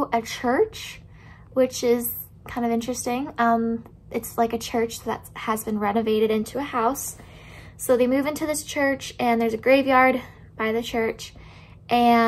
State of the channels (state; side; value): identical; both; correlation 1.00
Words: a church, which is kind of interesting. It's like a church that has been renovated into a house. So they move into this church, and there's a graveyard by the church,